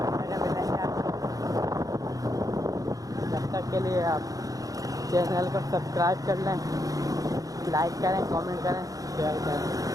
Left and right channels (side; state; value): left; late; 0.17 ms